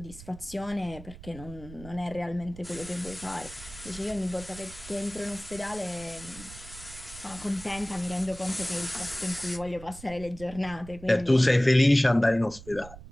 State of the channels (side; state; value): right; noise; rumble, 16 dB below the sound